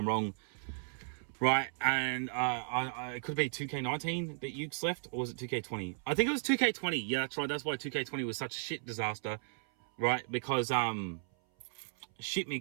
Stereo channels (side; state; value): left; silent; 54 dB below the other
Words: wrong, right? And it could be 2K19 that Ukes left, or was it 2K20? I think it was 2K20. Yeah, that's right. That's why 2K20 was such a shit disaster, right? Because shit